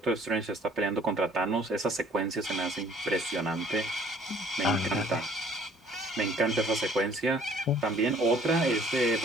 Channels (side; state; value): both; normal; correlation 0.57